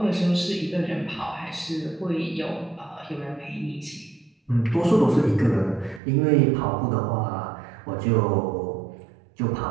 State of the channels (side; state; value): left; drops out; at 6.0 s